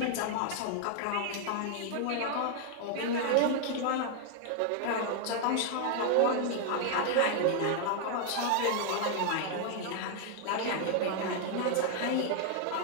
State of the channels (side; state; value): both; different; correlation 0.00